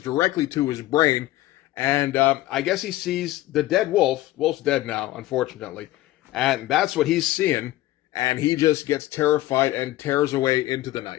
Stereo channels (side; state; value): right; quieter; 16.1 dB